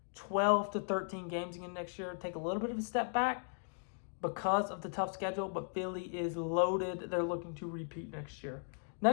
12 to 13 games again next year. Take a little bit of a step back because of the tough schedule, but Philly is loaded. They're looking to repeat next year.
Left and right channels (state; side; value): silent; right; digital silence